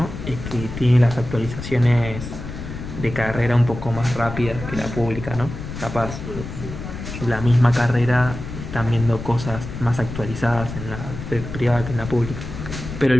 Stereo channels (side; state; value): left; noise; rumble, 9 dB below the sound